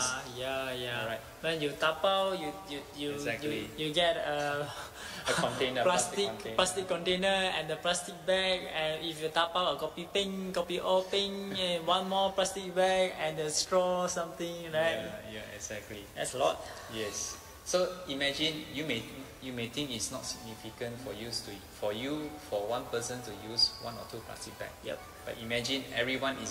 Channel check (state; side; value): identical; both; correlation 1.00